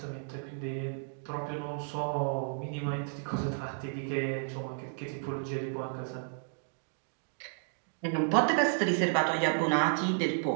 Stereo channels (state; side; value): silent; left; digital silence